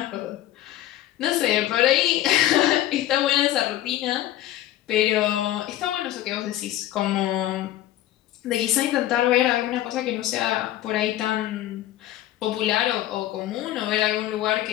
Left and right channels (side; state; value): right; quieter; 13.5 dB